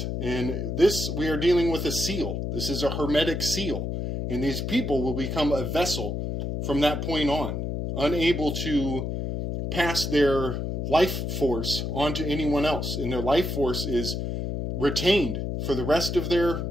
And this, we are dealing with a seal. This is a hermetic seal. And these people will become a vessel from that point on, unable to pass their life force onto anyone else. And their life force is retained for the rest of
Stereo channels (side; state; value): left; noise; hum, 3 dB below the sound